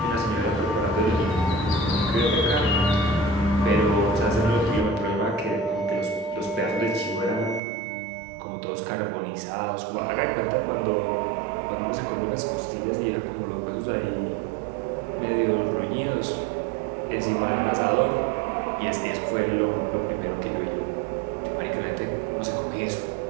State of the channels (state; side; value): drops out; left; at 7.6 s